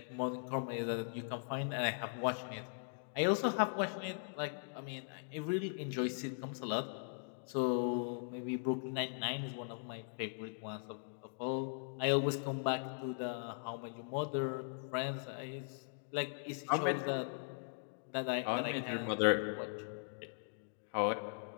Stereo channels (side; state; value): right; silent; digital silence